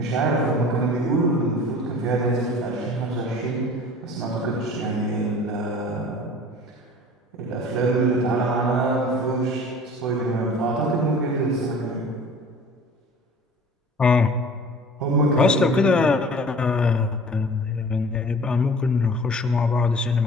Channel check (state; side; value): normal; both; correlation 0.44